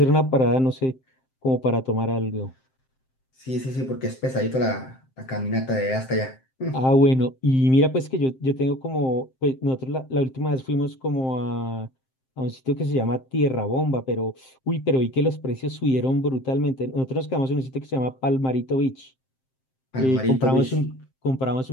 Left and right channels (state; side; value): late; right; 7.6 ms